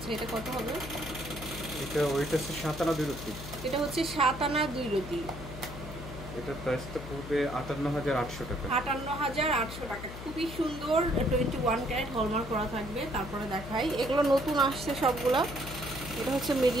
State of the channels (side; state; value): left; noise; hum, 11 dB below the sound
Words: এটা কত হবে? এটা ওইটা হচ্ছে 7 আনা 2 রতি। এটা হচ্ছে 7 আনা 2 রতি। এটা প্রাইসটা পড়বে 58800 টাকা। 58800 টাকা। খুবই সুন্দর 21 ক্যারেট হলমার্ক করা থাকবে। তারপরে দেখাই, এগুলো নতুন আসছে সবগুলা। এটা হচ্ছে